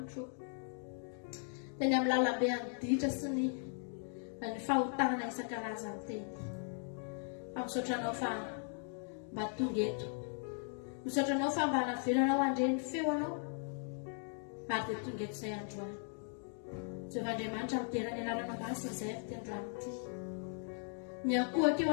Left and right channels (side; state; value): right; silent; 52 dB below the other